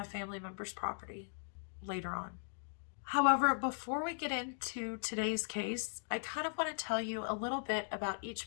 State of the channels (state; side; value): silent; right; digital silence